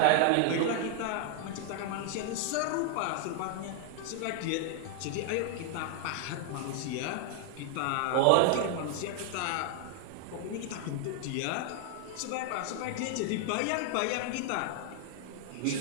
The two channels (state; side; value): different; both; correlation 0.01